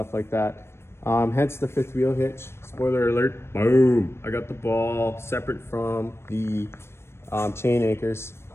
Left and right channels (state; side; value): late; right; 0.12 ms